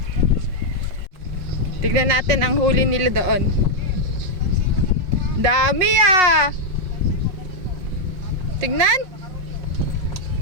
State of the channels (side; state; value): left; late; 5.5 ms